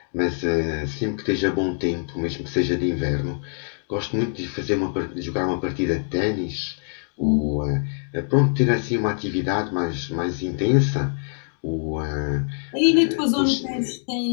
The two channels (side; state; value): right; silent; 63 dB below the other